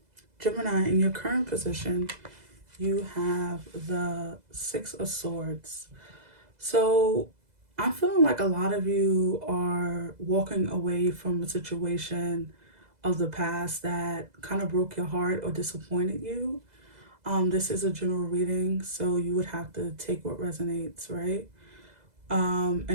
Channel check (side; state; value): left; late; 2.0 ms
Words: Gemini, in your current position, you have the Six of Swords. So I'm feeling like a lot of you are walking away from a situation of the past that kind of broke your heart or disappointed you. This is a general reading, so you would have to take what resonates, right?